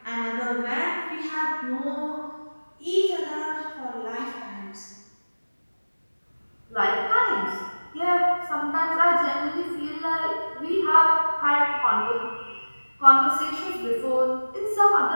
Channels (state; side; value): inverted; both; correlation -1.00